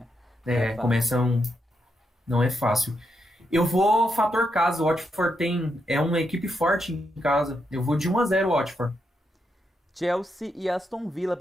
é começam... Não é fácil. Eu vou fator casa. O Watford é uma equipe forte em casa. Eu vou de 1-0 Watford. Chelsea e Aston Villa,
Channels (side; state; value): both; normal; correlation 0.82